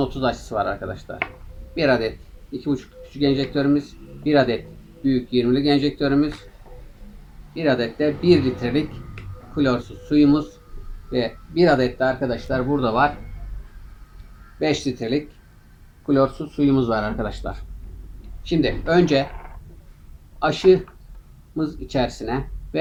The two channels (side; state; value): both; identical; correlation 1.00